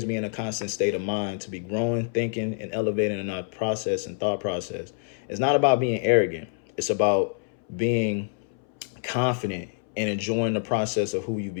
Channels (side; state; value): right; silent; 60 dB below the other